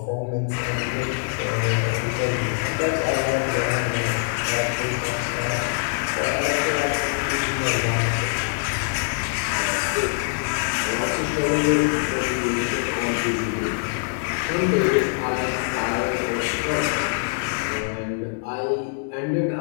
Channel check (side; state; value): right; silent; digital silence